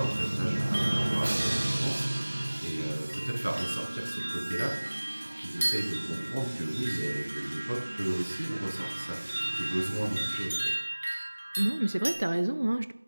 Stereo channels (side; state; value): both; inverted; correlation -1.00